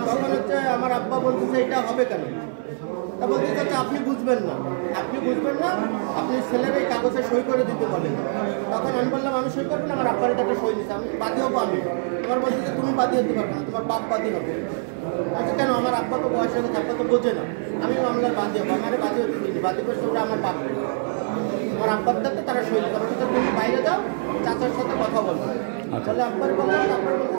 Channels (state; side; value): silent; left; 63 dB below the other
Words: তখন হচ্ছে আমার আব্বা বলতেছে এটা হবে কেন? তা বলতে চাচ্ছে আপনি বুঝবেন না, আপনি বুঝবেন না, আপনি ছেলের এই কাগজে সই করে দিতে বলেন। তখন আমি বললাম আমি সই করবো না, আমার আব্বার একটা সই দিচ্ছে, আমি বাদী হবো। আমি তোমার বলছি যে তুমি বাদী হতে পারবে না, তোমার বাপ বাদী হবে। আচ্ছা কেন? আমার আব্বা তো বয়স হয়ে গেছে, আব্বা তো বোঝে না, আমি মামলার বাদী হবো। আমার বাদী হতে দিচ্ছি, বাদী করছে ওরা আমার বাপ, আমার আব্বার দাঁতে তারা সই দিতে পারবে। তুমি বাইরে যাও, চাচার সাথে কথা বলবো। তাহলে আব্বার বললাম, আব্বার